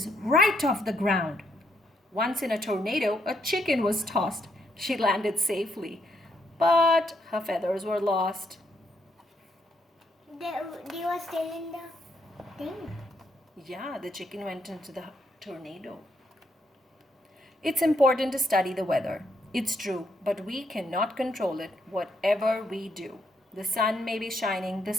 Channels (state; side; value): normal; both; correlation 0.76